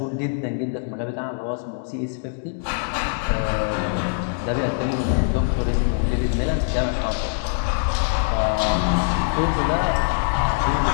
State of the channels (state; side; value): silent; right; digital silence